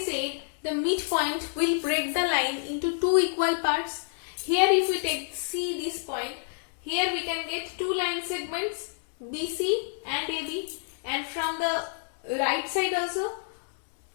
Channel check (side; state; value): right; silent; digital silence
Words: the midpoint will break the line into two equal parts. Here if we take C, this point, here we can get two line segments, BC and AB. And from the right side also,